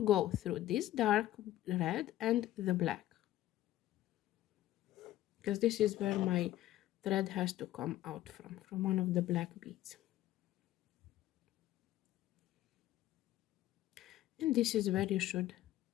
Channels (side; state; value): right; quieter; 14.3 dB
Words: go through this dark red and the black, because this is where my thread has to come out from one of the black beads. And this is where you should